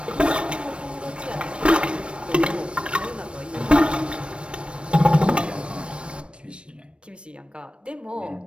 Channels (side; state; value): left; late; 0.058 ms